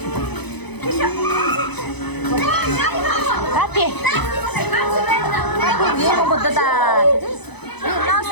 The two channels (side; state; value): right; late; 0.99 ms